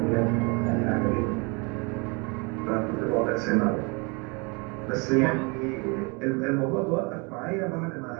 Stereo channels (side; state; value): left; quieter; 30.5 dB